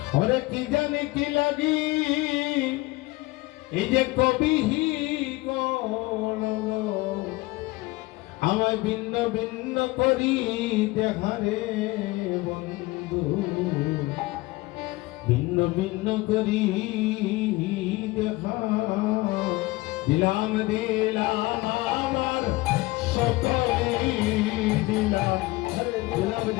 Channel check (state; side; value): quieter; right; 21.0 dB